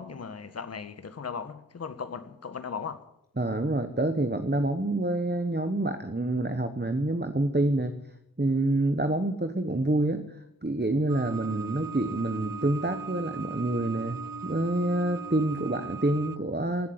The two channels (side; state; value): both; normal; correlation 0.63